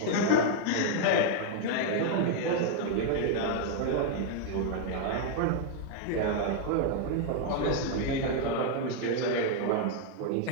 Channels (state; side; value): different; both; correlation 0.00